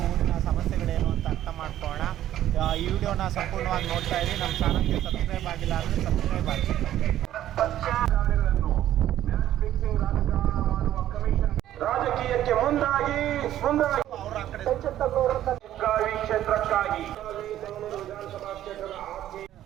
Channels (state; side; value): quieter; left; 12.5 dB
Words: ಊರಿನ ಸಮಸ್ಯೆಗಳೇನು ಅಂತ ಅರ್ಥ ಮಾಡ್ಕೊಳ್ಳೋಣ. ಈ ವಿಡಿಯೋನ ಸಂಪೂರ್ಣವಾಗಿ ನೋಡ್ತಾ ಇದ್ದೀವಿ. ನಮ್ಮ ಚಾನಲ್ಗೆ ಸಬ್ಸ್ಕ್ರೈಬ್ ಆಗಿಲ್ಲ ಅಂದರೆ ಸಬ್ಸ್ಕ್ರೈಬ್ ಆಗಿ. ರಾಜಕೀಯಕ್ಕೆ ಮುಂದಾಗಿ ಕ್ಷೇತ್ರಕ್ಕಾಗಿ